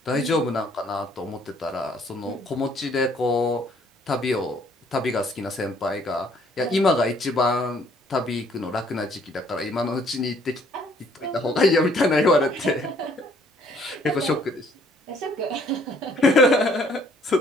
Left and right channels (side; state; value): both; normal; correlation 0.62